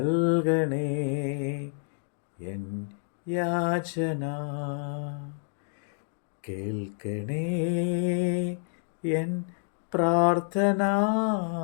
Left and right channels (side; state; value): right; silent; 59 dB below the other